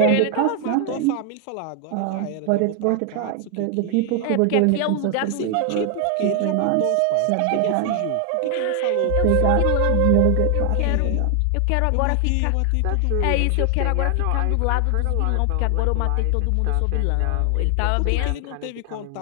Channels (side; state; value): both; different; correlation 0.00